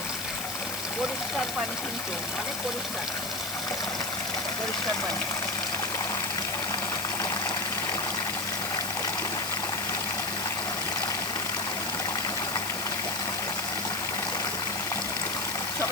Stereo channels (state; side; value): noise; left; hiss, 5 dB below the sound